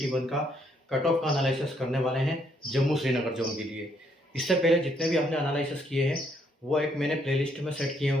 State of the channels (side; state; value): both; normal; correlation 0.71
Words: 1 का कट ऑफ का एनालिसिस करने वाले हैं जम्मू श्रीनगर जोन के लिए। इससे पहले जितने भी आपने एनालिसिस किए हैं वो एक मैंने प्लेलिस्ट में सेट किए